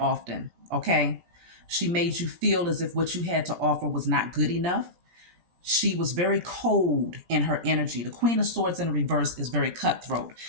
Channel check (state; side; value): late; left; 17 ms